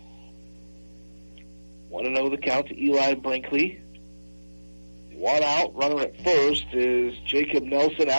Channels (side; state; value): both; inverted; correlation -1.00